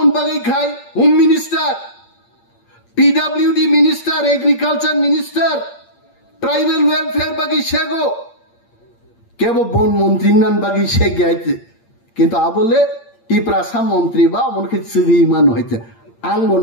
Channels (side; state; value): right; late; 8.7 ms